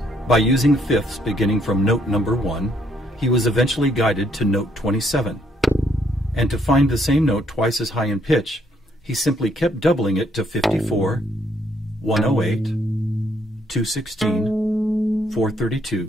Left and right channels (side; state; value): both; normal; correlation 0.70